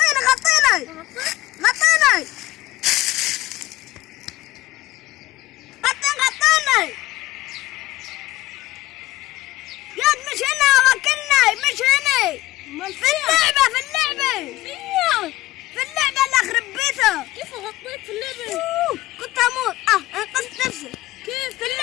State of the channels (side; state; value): right; quieter; 16.9 dB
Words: ياد مش هنا. وكلني مش هنا. في اللعبة اللي اخرب بيتها. كيف غطيت في اللعبة؟ كنت اموت. انقذت نفسي. كيف؟ في